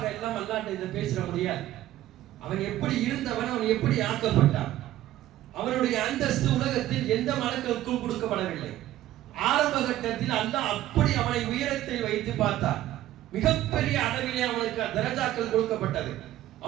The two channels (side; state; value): left; quieter; 14.1 dB